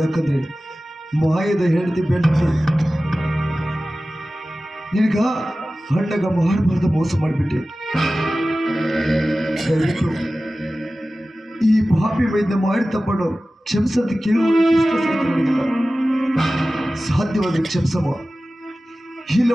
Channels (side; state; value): both; normal; correlation 0.96